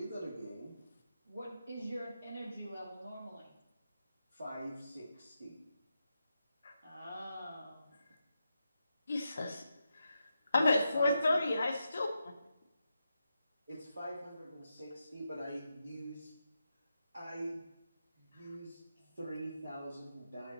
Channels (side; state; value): both; inverted; correlation -0.87